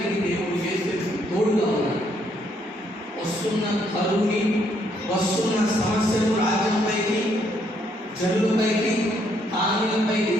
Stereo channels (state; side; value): normal; both; correlation 0.71